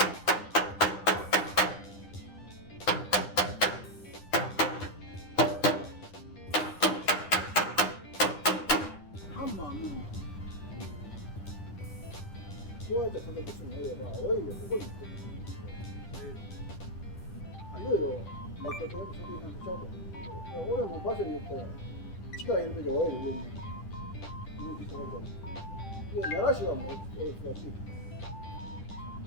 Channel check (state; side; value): late; right; 10 ms